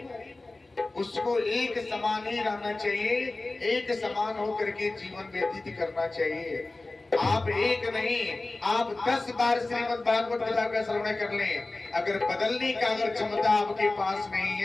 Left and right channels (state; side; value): quieter; right; 3.1 dB